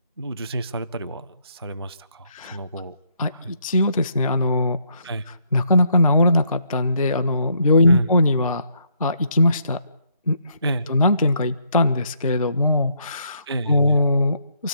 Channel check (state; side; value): inverted; both; correlation -0.71